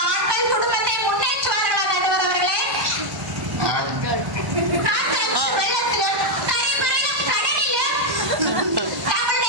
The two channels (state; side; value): late; left; 1.1 ms